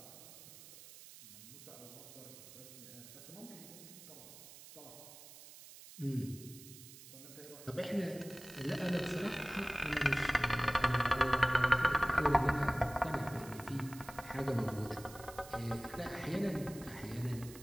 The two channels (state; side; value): noise; right; hiss, 17 dB below the sound